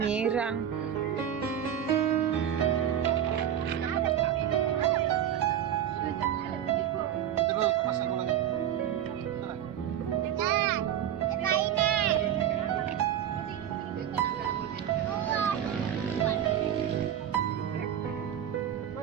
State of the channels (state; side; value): quieter; left; 10.1 dB